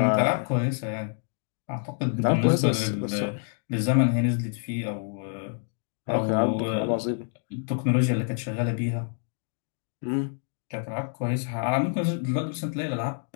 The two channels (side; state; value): right; silent; 60 dB below the other